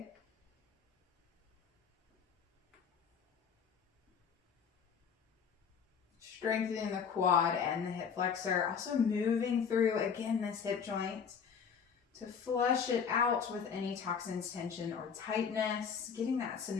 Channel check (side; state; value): right; quieter; 6.7 dB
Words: Strengthening the quad and the hip flexor. Also moving through, again, this hip joint to flush it out with any toxins, tension, or tightness. Getting that